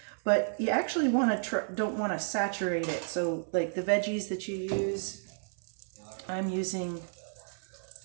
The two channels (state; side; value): silent; left; 56 dB below the other